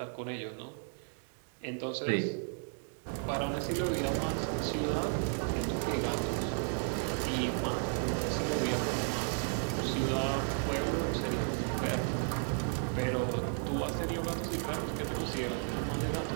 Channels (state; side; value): silent; left; 55 dB below the other